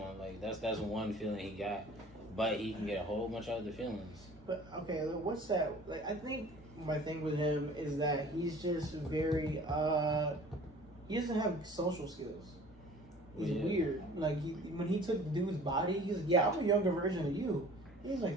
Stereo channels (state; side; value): normal; both; correlation 0.47